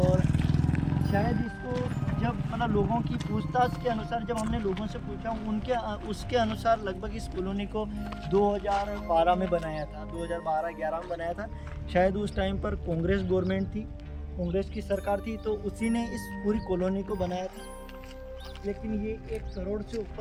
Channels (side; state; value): both; identical; correlation 1.00